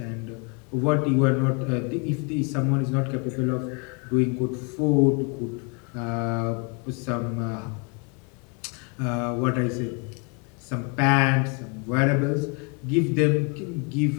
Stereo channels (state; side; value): quieter; right; 35.0 dB